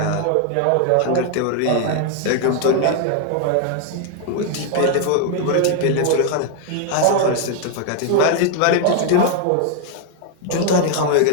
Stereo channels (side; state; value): both; different; correlation 0.00